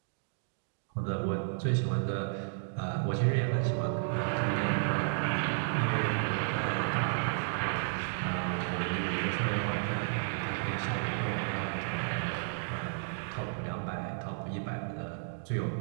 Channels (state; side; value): silent; left; digital silence